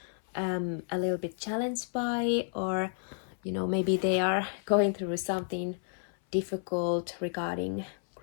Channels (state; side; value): silent; right; 57 dB below the other